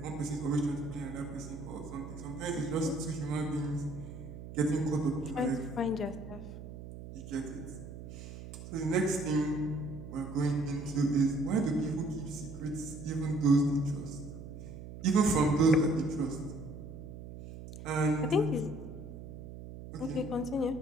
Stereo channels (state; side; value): noise; right; hum, 12 dB below the sound